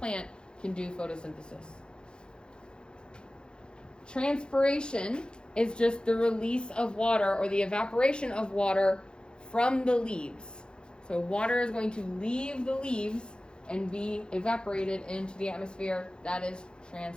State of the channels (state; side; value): late; right; 0.049 ms